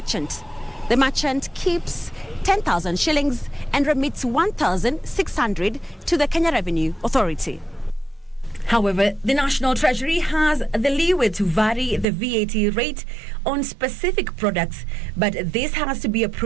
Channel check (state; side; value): drops out; left; at 12.1 s